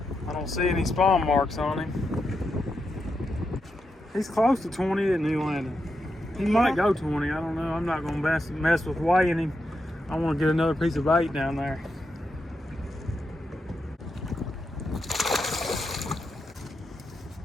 I don't see any spawn marks on him. He's close to 20, isn't he, Landon? He might go 20, I don't know. I'm not going to mess with weighing him. I want to get another piece of bait down there.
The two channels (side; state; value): both; normal; correlation 0.85